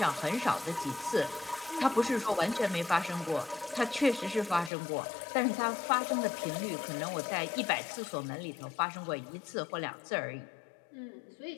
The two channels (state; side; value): drops out; right; at 4.7 s